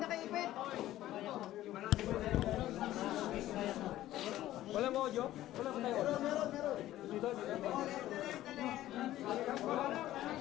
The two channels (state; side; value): quieter; right; 14.3 dB